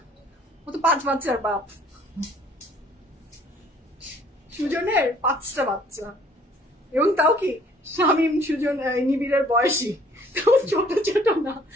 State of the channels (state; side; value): normal; both; correlation 0.58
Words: ও তো 5 বাচ্চার বাপ। সুজনের 5টা বাচ্চা, এবং তাও কি শামীম সুজন নিবিড়ের বয়সী, ছোট ছোট না,